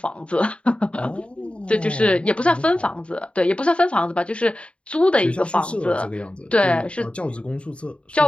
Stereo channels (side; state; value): right; late; 0.059 ms